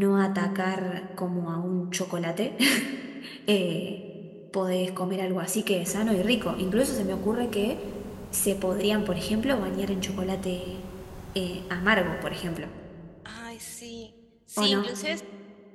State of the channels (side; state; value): both; identical; correlation 1.00